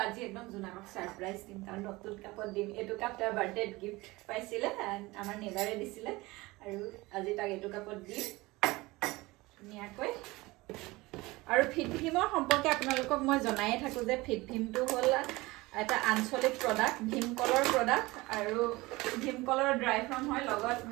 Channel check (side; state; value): left; quieter; 21.4 dB